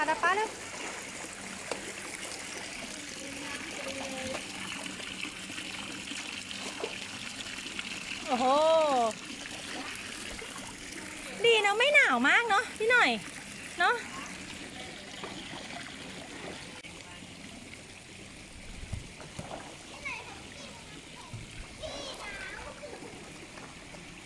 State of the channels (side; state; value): both; identical; correlation 1.00